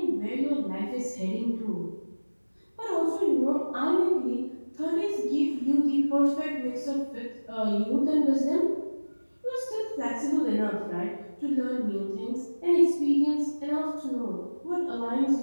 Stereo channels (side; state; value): both; inverted; correlation -1.00